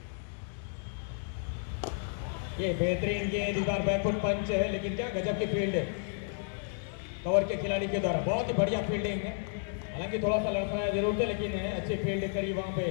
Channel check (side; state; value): right; silent; digital silence